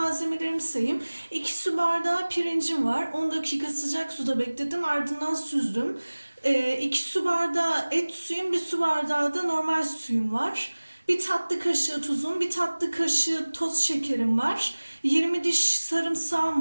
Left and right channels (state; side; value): inverted; both; correlation -1.00